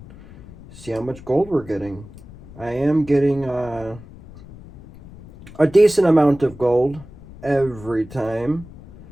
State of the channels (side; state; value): left; noise; rumble, 19 dB below the sound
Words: see how much gold we're getting. I am getting a decent amount of gold every time.